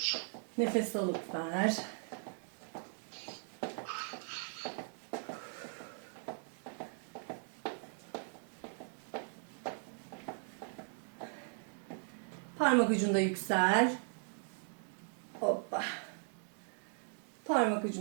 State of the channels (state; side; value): silent; left; 52 dB below the other